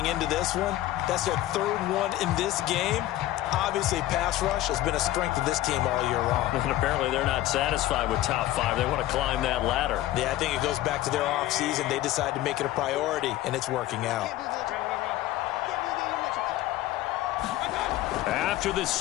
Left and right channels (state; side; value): quieter; right; 15.0 dB